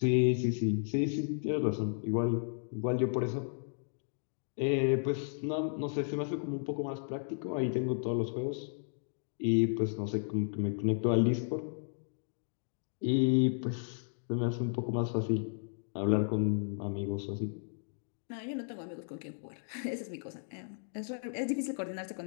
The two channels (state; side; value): silent; right; digital silence